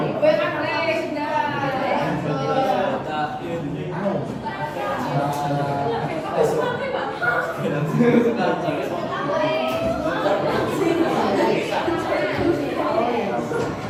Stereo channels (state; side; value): identical; both; correlation 1.00